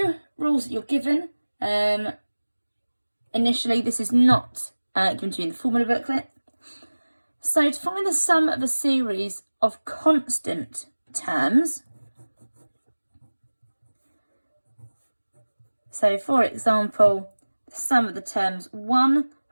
rules that you're given. Initially, this is not given to you in the formula booklet. So to find the sum of a series of constant terms, so for example, the sum of the terms 1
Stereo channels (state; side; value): inverted; both; correlation -1.00